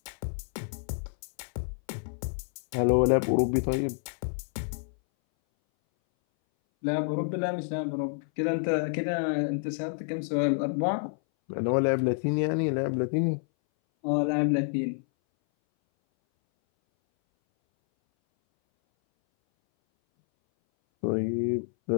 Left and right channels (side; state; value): right; silent; 59 dB below the other